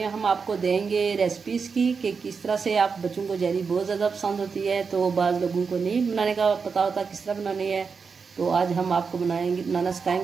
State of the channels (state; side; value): quieter; left; 5.4 dB